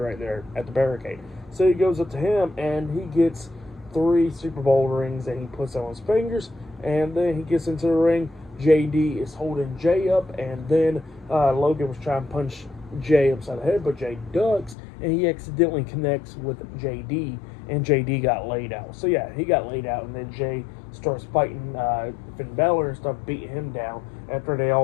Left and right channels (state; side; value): drops out; right; at 14.8 s